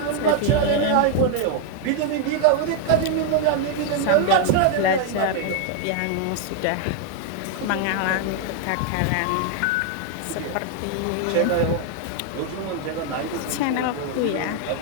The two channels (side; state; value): both; different; correlation 0.00